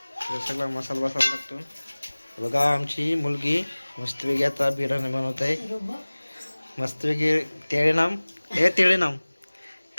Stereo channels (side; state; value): both; inverted; correlation -1.00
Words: सगळा मसाला लागतो. बघा आमची मुलगी मस्तपैकी आता बिर्याणी बनवत आहे. मस्तपैकी तेळे नाम तेळे नाम